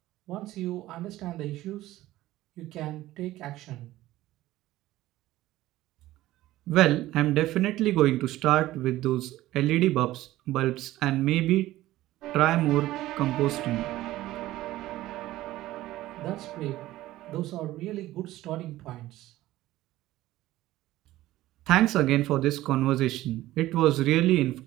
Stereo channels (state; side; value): quieter; left; 15.9 dB